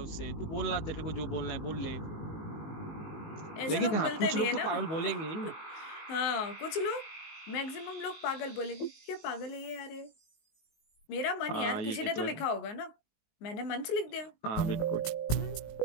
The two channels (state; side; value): late; right; 19 ms